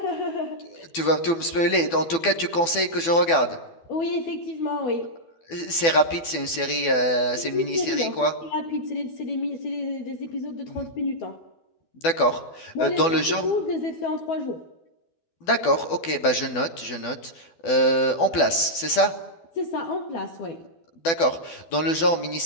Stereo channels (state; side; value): late; right; 12 ms